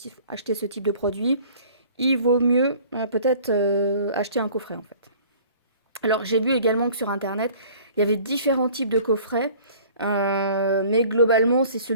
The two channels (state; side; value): inverted; both; correlation -0.50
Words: acheter ce type de produit, il vaut mieux peut-être acheter un coffret en fait. Alors j'ai vu également que sur internet, il y avait différents types de coffrets, mais globalement c'est